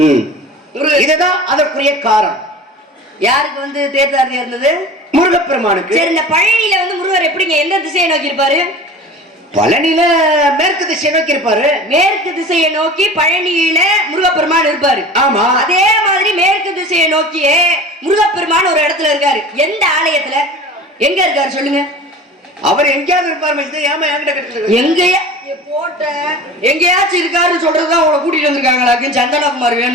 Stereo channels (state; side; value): normal; both; correlation 0.38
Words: இதுதான் அதற்குரிய காரணம். யாருக்கு வந்து தேர்ச்சாரதியா இருந்தது? முருகப்பெருமானுக்கு. சரி, இந்த பழனியில வந்து முருகர் எப்படிங்க எந்த திசையை நோக்கி இருப்பாரு? பழனியில மேற்கு திசையை நோக்கி இருப்பாரு. மேற்கு திசையை நோக்கி பழனியில முருகப்பெருமான் இருப்பாரு. ஆமா, அதே மாதிரி மேற்கு திசையை நோக்கியே முருகப்பெருமான் ஒரு இடத்துல இருக்காரு. எந்த ஆலயத்துல எங்க இருக்காரு சொல்லுங்க? அவர் எங்கேயாவது இருப்பாரு. எங்கேயா போட்ட எங்கேயாச்சும் இருக்காருன்னு சொல்றதுதான் உங்களை கூட்டிட்டு வந்திருக்காங்களா? சந்தனகுமார்